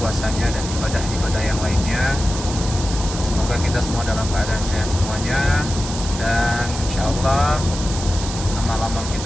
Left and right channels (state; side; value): noise; right; hiss, 9 dB below the sound